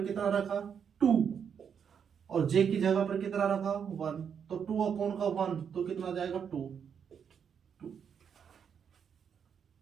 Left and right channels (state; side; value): quieter; left; 7.4 dB